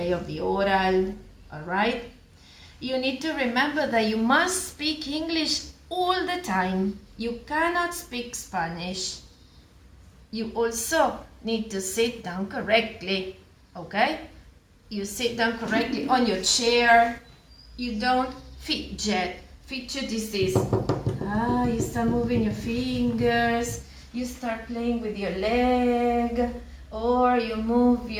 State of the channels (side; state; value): both; identical; correlation 1.00